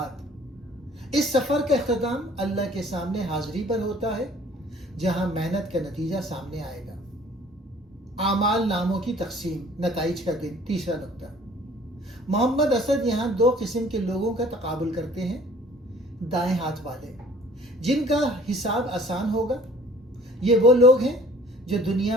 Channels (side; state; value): both; normal; correlation 0.53